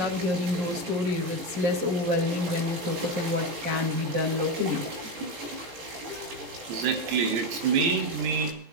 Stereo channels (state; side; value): late; left; 17 ms